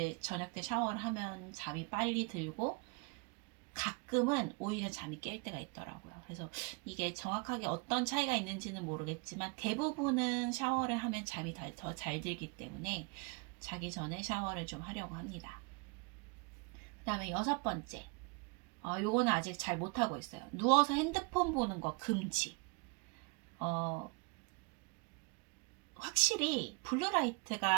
저녁 때 샤워를 하면 잠이 빨리 들고 가끔은 오히려 잠이 깰 때가 있더라고요. 그래서 이게 정확하게 어떤 차이가 있는지는 모르겠지만 대부분은 샤워를 하면 잠이 더 잘 들기 때문에 자기 전에 샤워를 좀 하려고 합니다. 그 다음에 6번째, 요거는 아직 잘 못하고 있어요. 누워서 핸드폰 보는 거 금지. 확실히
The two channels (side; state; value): left; quieter; 32.2 dB